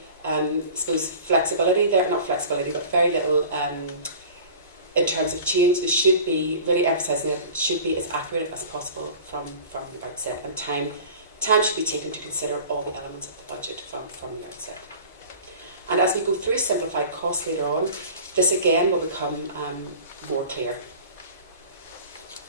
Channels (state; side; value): inverted; both; correlation -0.40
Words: I suppose, flexibility there, not flexibility, but very little in terms of change. There should be, really emphasising it, should be as accurate as possible from the outset, and time should be taken to consider all the elements of the budget from the outset. And as we go through simplified costs later on, this again will become more clear.